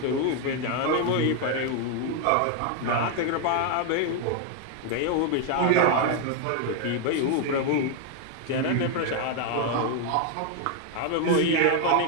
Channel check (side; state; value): both; different; correlation 0.01